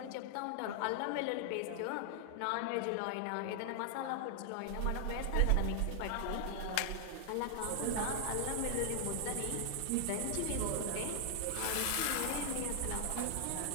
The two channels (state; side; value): different; both; correlation 0.00